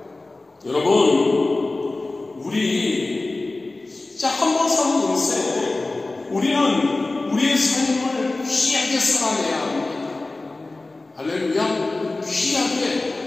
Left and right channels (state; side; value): quieter; right; 3.1 dB